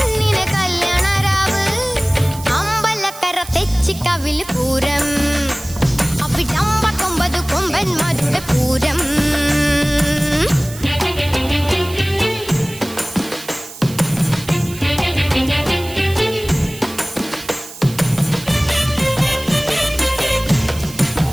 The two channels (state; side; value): noise; right; hiss, 15 dB below the sound